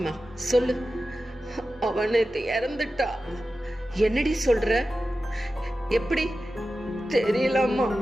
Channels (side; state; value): both; normal; correlation 0.93